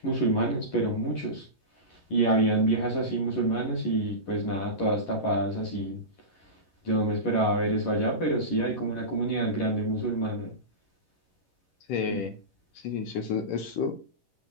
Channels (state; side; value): late; right; 11 ms